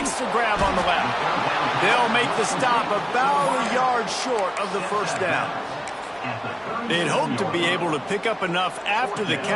the grab on the left. They'll make the stop about a yard short of the first down. They'd hope to be able to pick up enough after the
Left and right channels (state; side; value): identical; both; correlation 1.00